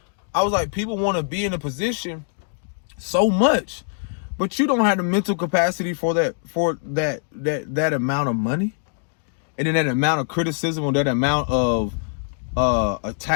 I was like, people want to be in a position so much, but you don't have the mental capacity for that amount of money, and then that amount of criticism, or that amount of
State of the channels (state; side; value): silent; right; 64 dB below the other